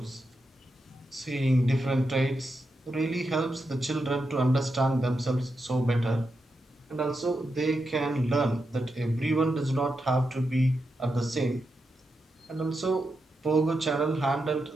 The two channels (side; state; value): both; normal; correlation 0.86